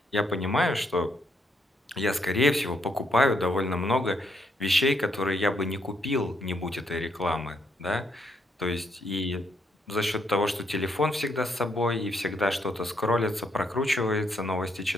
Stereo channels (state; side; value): normal; both; correlation 0.74